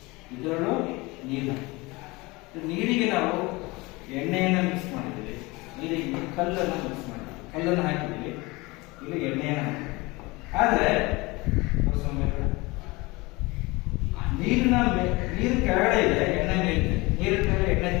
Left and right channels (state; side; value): quieter; right; 23.5 dB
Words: ಇದರಲ್ಲೂ ನೀರು ಹಾಕಿದ್ದೀವಿ. ನೀರಿಗೆ ನಾವು ಎಣ್ಣೆಯನ್ನು ಮಿಕ್ಸ್ ಮಾಡಿದ್ದೀವಿ, ನೀರಿಗೆ ಕಲ್ಲನ್ನು ಮಿಕ್ಸ್ ಮಾಡಿದ್ದೀವಿ, ಕಲ್ಲನ್ನು ಹಾಕಿದ್ದೀವಿ, ಇಲ್ಲಿ ಎಣ್ಣೆಯನ್ನು ಹಾಕಿದ್ದೀವಿ. ಆದರೆ ನೀರು ಕೆಳಗಡೆ ಇದೆ, ಎಣ್ಣೆ ಮೇಲಿದೆ, ನೀರಿನ ಮೇಲೆ ಎಣ್ಣೆ